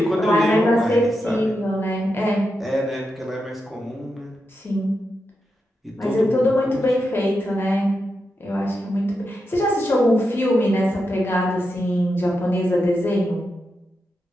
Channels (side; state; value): both; normal; correlation 0.87